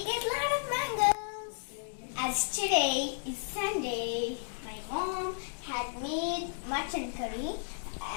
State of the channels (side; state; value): right; silent; digital silence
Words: get a lot of mangoes. As today is Sunday, my mom had made mutton curry